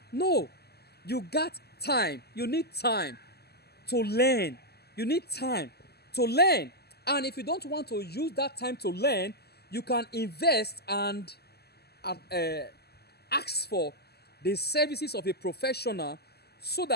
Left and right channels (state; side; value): late; right; 0.46 ms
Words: No, you got time. You need time to learn. You need time to learn. And if you don't want to use that time to learn, you can invest and ask for the services of a professional so